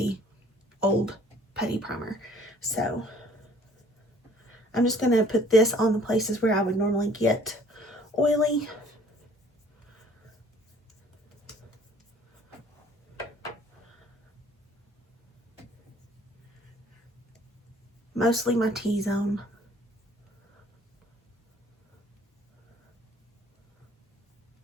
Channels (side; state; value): both; normal; correlation 0.55